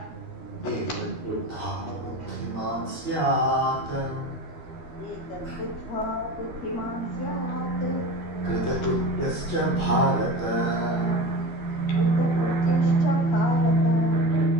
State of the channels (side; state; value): right; late; 13 ms